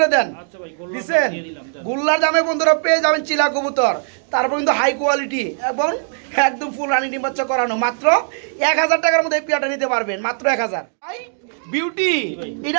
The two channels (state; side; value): silent; left; digital silence